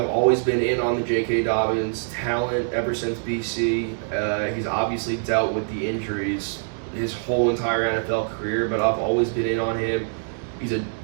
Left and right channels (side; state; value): left; silent; 62 dB below the other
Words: always been in on the J.K. Dobbins talent ever since BC. He's obviously dealt with the injuries his whole entire NFL career, but I've always been in on him. He's a